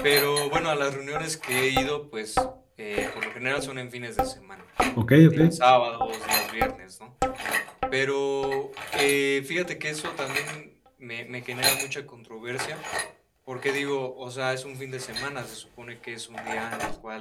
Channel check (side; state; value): both; identical; correlation 1.00